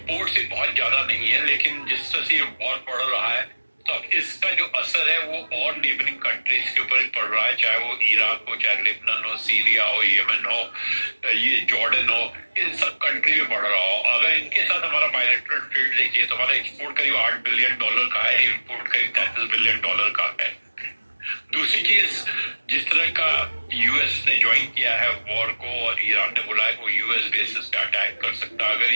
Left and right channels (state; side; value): inverted; both; correlation -1.00